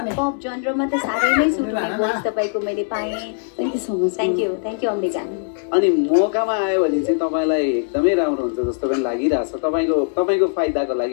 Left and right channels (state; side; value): silent; right; digital silence